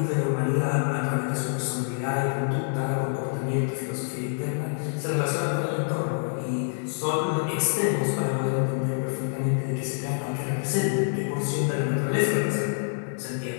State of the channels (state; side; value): silent; right; 60 dB below the other